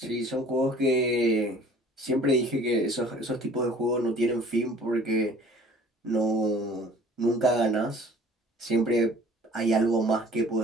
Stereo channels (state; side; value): normal; both; correlation 0.50